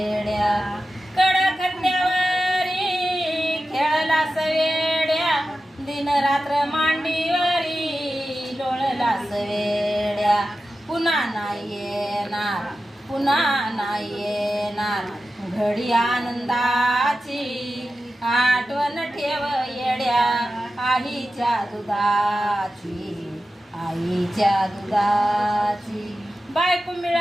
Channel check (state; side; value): normal; both; correlation 0.93